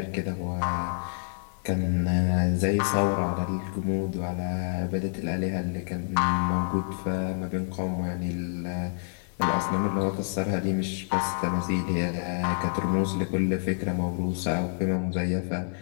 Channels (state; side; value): silent; right; digital silence